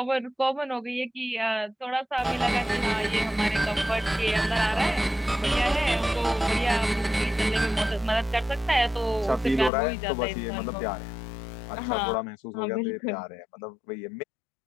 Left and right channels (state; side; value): drops out; right; at 9.7 s